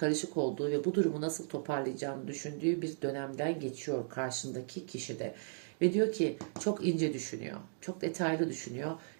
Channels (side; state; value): left; silent; digital silence